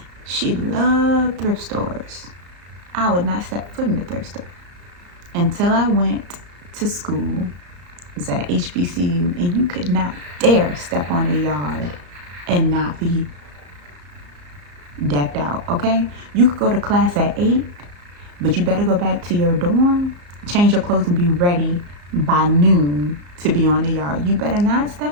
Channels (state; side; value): late; left; 34 ms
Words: She loved thrift stores. I would not step foot in the thrift store until I went to school. It was at HBCU, and you could not dare step on the yard and not be decked out, okay? You could go to class at 8, but you better go back to your dorm, change your clothes, and be ready by noon to be on the yard. You better not